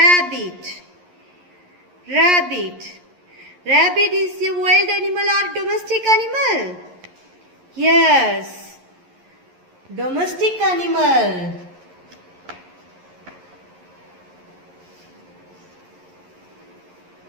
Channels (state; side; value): late; left; 11 ms